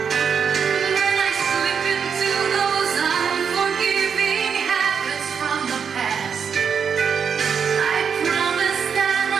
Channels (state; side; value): quieter; left; 6.8 dB